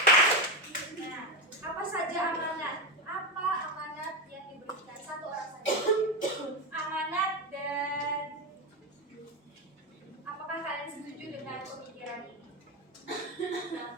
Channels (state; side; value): normal; both; correlation 0.11